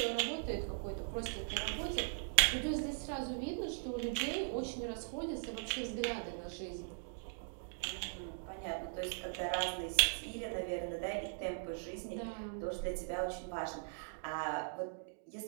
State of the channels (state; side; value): silent; left; digital silence